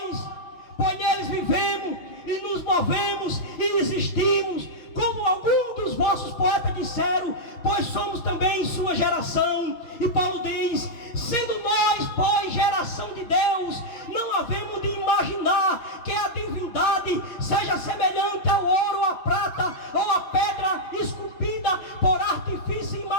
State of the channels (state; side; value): late; right; 6.1 ms